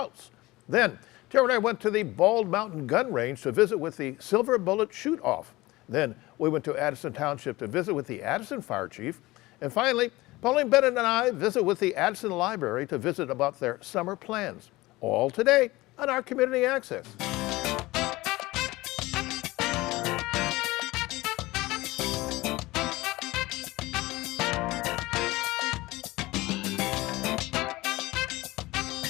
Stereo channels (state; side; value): quieter; right; 19.8 dB